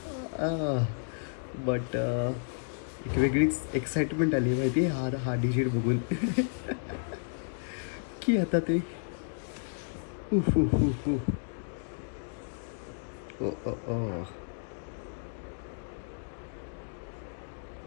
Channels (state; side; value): silent; right; digital silence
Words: बट एक वेगळीच एक्साइटमेंट आली माहिती आहे हा डिजिट बघून की आता ते ओ ओ ओ